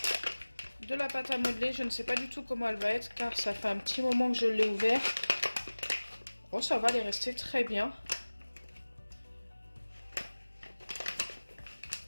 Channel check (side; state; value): both; inverted; correlation -1.00